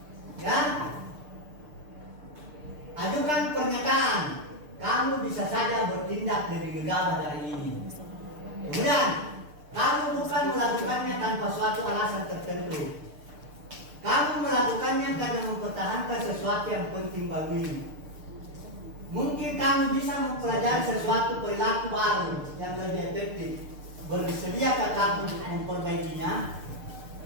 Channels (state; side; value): late; left; 6.7 ms